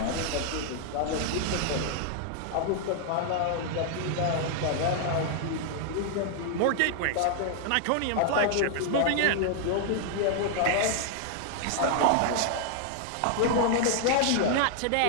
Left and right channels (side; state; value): both; different; correlation 0.00